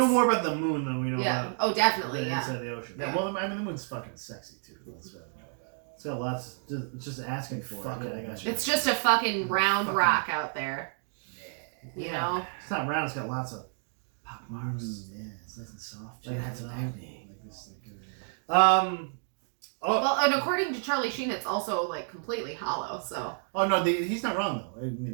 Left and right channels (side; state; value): left; silent; 58 dB below the other